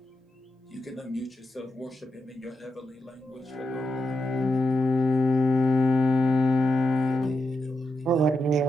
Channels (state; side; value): normal; both; correlation 0.86